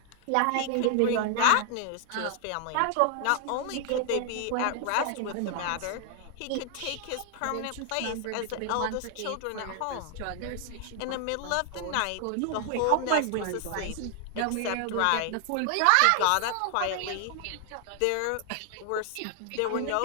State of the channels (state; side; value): different; both; correlation 0.00